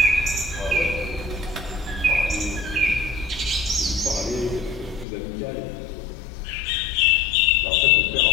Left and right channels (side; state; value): right; drops out; at 5.1 s